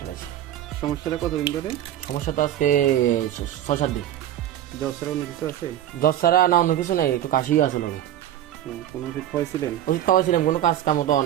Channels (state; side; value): quieter; left; 11.8 dB